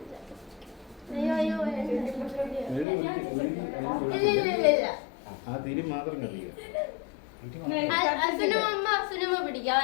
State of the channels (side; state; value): right; drops out; at 2.9 s